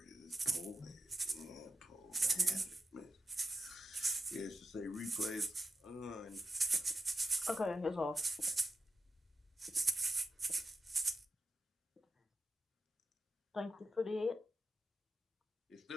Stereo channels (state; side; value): normal; both; correlation 0.90